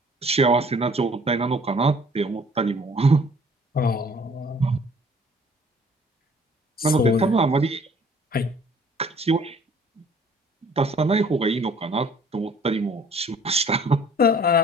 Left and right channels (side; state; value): both; normal; correlation 0.55